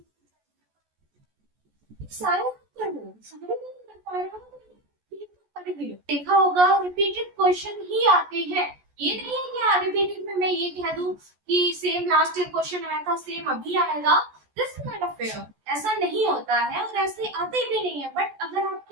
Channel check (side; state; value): left; late; 14 ms